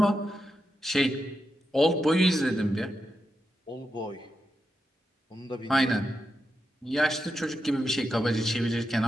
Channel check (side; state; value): both; normal; correlation 0.87